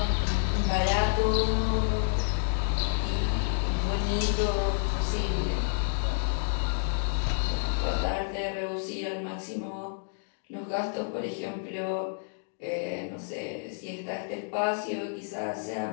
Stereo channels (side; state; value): right; silent; digital silence